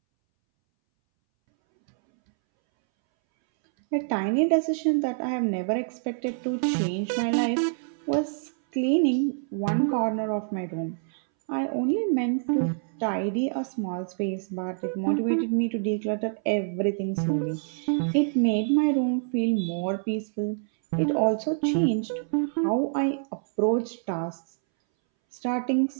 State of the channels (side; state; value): left; silent; 61 dB below the other